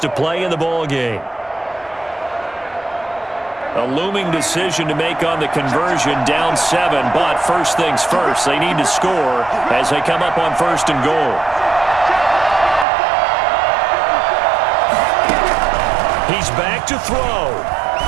play in the ball game. A looming decision to make on the conversion, down 7. But first things first, they need to score as they come up on 1st and goal. He's back to throw.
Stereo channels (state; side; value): drops out; left; at 12.9 s